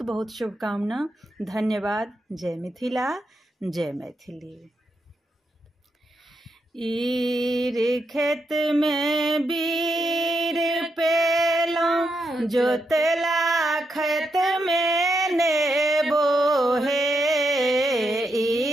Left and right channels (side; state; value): both; normal; correlation 0.82